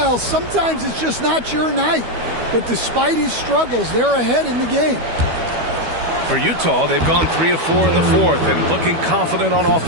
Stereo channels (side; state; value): left; late; 12 ms